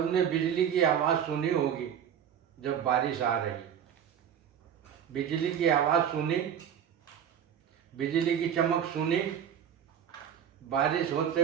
बिजली की आवाज़ सुनी होगी। जब बारिश आ रही, बिजली की आवाज़ सुनी, बिजली की चमक सुनी, बारिश होते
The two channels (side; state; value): left; quieter; 8.8 dB